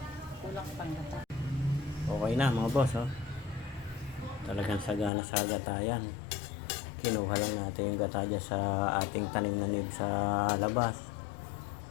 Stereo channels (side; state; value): right; drops out; at 5.1 s